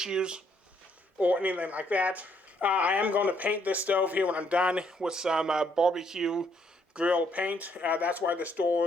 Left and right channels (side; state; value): both; normal; correlation 0.70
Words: or anything like that. I am going to paint this stove here when I'm done with some barbecue grill paint. That's why this